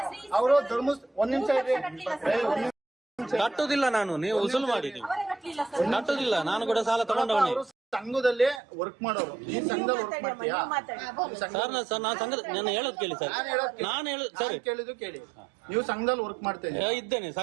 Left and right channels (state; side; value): drops out; left; at 8.6 s